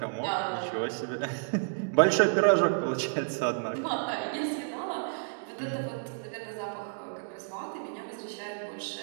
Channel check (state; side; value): silent; left; digital silence